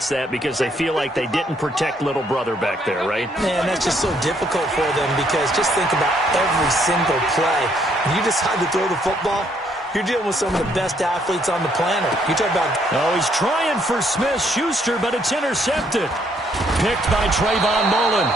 that because they feel like they didn't protect little brother back there, right? Man, that's just so difficult for them because just think about every single play. When you decide to throw the football, you're dealing with some of the best athletes on the planet. You talk about... Oh, he's trying for Smith-Schuster, but it's intercepted. Picked by Trayvon Mullen.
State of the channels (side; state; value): both; normal; correlation 0.69